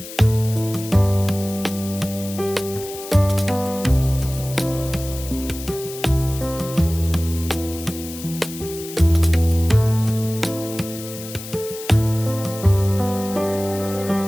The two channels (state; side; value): noise; left; hiss, 13 dB below the sound